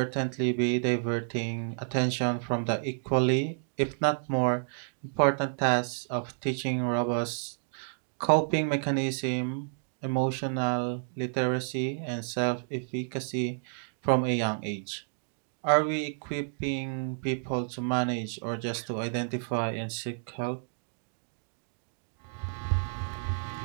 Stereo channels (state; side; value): silent; left; digital silence